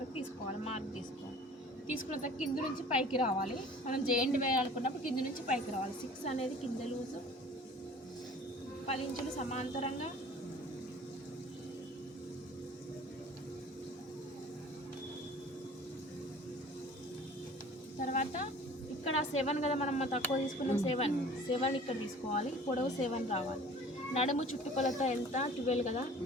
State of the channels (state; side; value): normal; both; correlation 0.46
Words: తీసుకోవాలి, మార్క్ తీసుకోవాలి. తీసుకున్న తర్వాత కింద నుంచి పైకి రావాలి. మనం జెయింట్ వేయాలనుకున్నప్పుడు కింద నుంచి పైకి రావాలి. 6 అనేది కింద లూజు, 10 ఇంచులు సమాంతరంగా, తర్వాత ఇక్కడ 7 కదా మనం తక్కువ తీసుకున్నాం, 7 ఇక్కడ తీసుకోవాలి. పొడవు 7 రావాలి. నడుము చుట్టుకొలత ఎంత, 12 కదా,